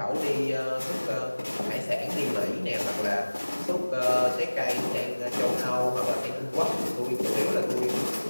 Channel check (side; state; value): both; inverted; correlation -1.00